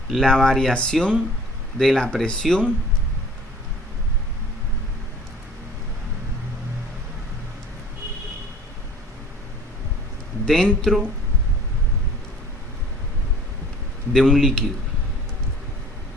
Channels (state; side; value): normal; both; correlation 0.49